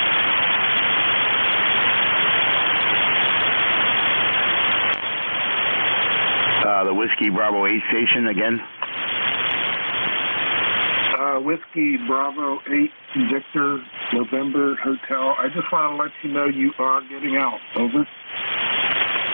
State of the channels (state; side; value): inverted; both; correlation -1.00